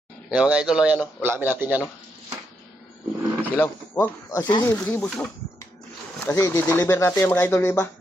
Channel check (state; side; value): normal; both; correlation 0.80